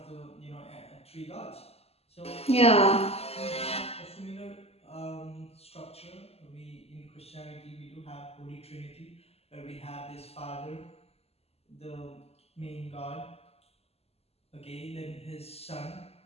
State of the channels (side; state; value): right; late; 0.29 ms